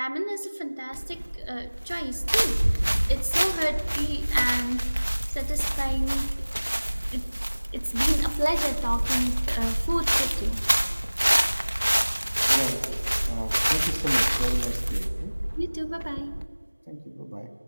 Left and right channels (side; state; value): both; inverted; correlation -1.00